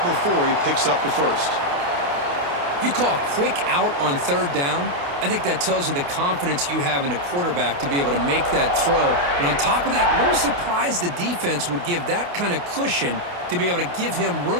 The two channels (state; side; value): late; left; 28 ms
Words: before he picks up the first. You call a quick out on 3rd down? I think that tells you the confidence you have in a quarterback to be able to make that throw. And on top of that, a little surprised the defense would give that kind of cushion to be able to give him